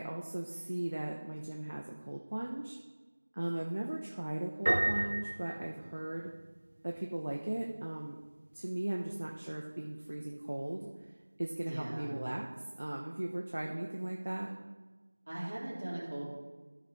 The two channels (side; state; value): both; inverted; correlation -1.00